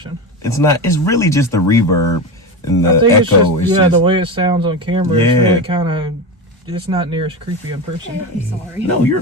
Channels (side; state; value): both; normal; correlation 0.20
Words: it's not, it's really just the reverb and the I think echo. it's just, the way it sounds on camera, Yeah. it's really kind of, it's not near as creepy in person. I'm sorry. No, you're